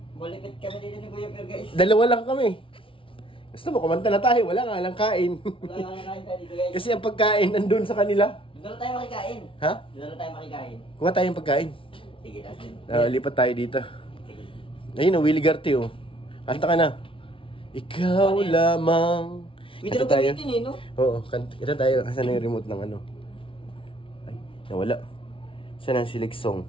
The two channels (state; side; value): late; right; 0.25 ms